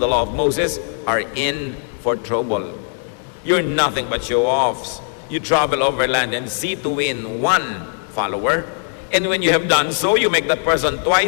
the law of Moses are in for trouble. You're nothing but show-offs. You travel over land and sea to win one follower, and when you have done so, you make that person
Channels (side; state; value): right; silent; 61 dB below the other